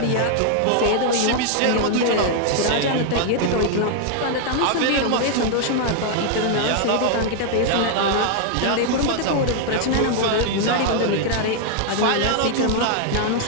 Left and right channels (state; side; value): different; both; correlation 0.00